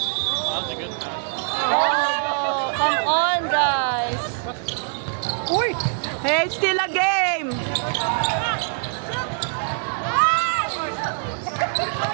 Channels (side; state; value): left; silent; digital silence